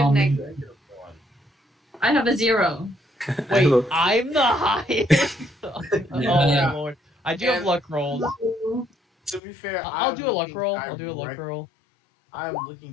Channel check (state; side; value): drops out; right; at 9.4 s